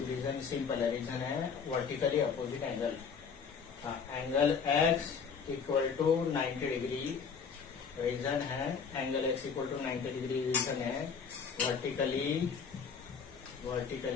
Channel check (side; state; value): right; quieter; 6.1 dB